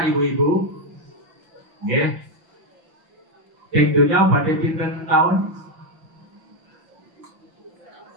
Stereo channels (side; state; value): left; late; 5.9 ms